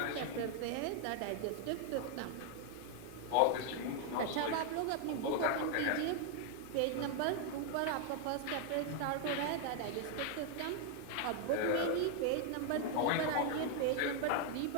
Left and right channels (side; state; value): both; different; correlation 0.00